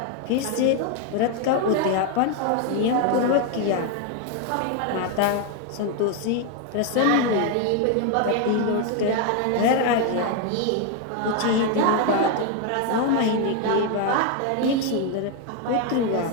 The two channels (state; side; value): different; both; correlation 0.01